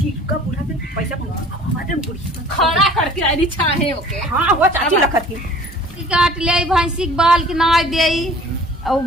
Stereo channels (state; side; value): normal; both; correlation 0.48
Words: का बूढ़ा से पैसा मांगा हमारे बुढ़ी खड़ा करके आई चाहे ओके। हां वो चाची लखत की काट ले भैंसी के बाल के नाय देई और